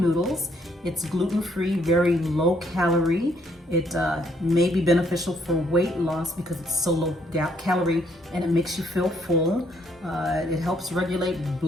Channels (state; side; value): normal; both; correlation 0.70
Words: It's gluten-free, very low calorie. It may be beneficial for weight loss because it's so low calorie, and it makes you feel full. It helps regulate